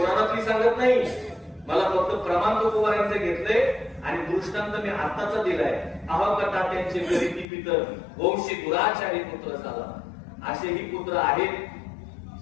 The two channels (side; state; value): right; drops out; at 7.5 s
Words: सांगत नाही, मला फक्त प्रमाण तुकोबारांचे घेतले आणि दृष्टांत मी आत्ताचा दिलाय. अहकटा त्यांचे करीती पितर वंशी गुराचारी पुत्र झाला. असेही पुत्र आहेत,